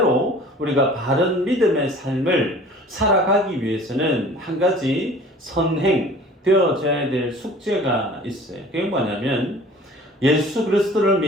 우리가 바른 믿음의 삶을 살아가기 위해서는 한 가지 선행되어져야 될 숙제가 있어요. 그게 뭐냐면 예수 그리스도를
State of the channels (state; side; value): normal; both; correlation 0.46